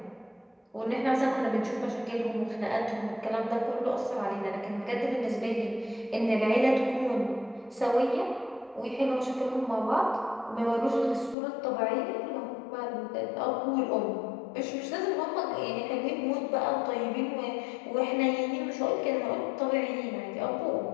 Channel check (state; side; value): drops out; right; at 11.4 s